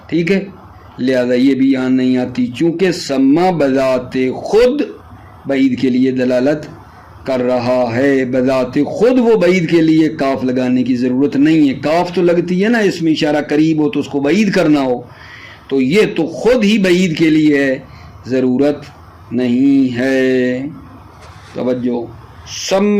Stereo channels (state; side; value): identical; both; correlation 1.00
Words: ٹھیک ہے، لہذا یہ بھی یہاں نہیں آتی، چونکہ سما بذات خود بعید کے لیے دلالت کر رہا ہے، بذات خود وہ بعید کے لیے کاف لگانے کی ضرورت نہیں ہے، کاف تو لگتی ہے نا اس میں اشارہ قریب ہو تو اس کو بعید کرنا ہو، تو یہ تو خود ہی بعید کے لیے ہے، ضرورت نہیں ہے۔ توجہ،